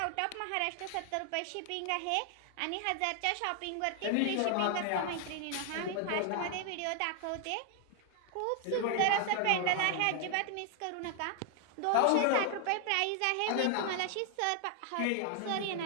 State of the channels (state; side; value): different; both; correlation 0.00